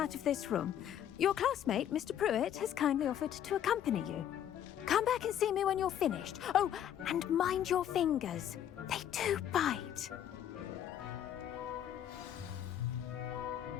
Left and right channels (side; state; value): right; quieter; 10.3 dB